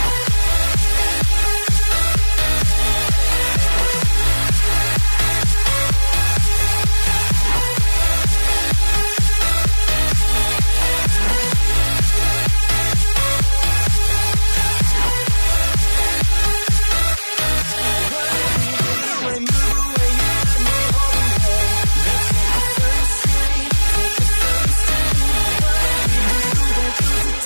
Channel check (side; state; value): both; inverted; correlation -1.00